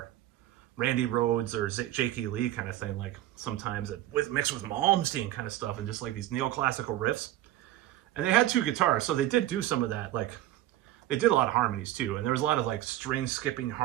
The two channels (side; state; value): left; quieter; 14.2 dB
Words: Randy Rhoads or J.K. Lee kind of thing. Like sometimes mixed with Malmsteen kind of stuff, and just like these neoclassical riffs. And they had 2 guitars, so they did do some of that. Like, they did a lot of harmonies too, and there was a lot of like string skipping